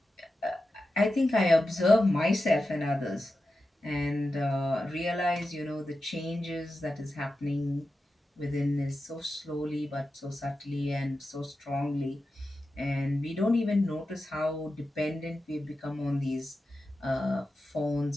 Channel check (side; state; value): both; normal; correlation 0.91